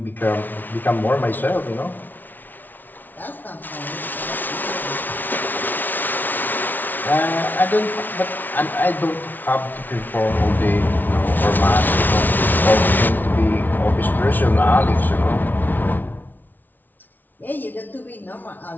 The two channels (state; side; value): late; right; 0.086 ms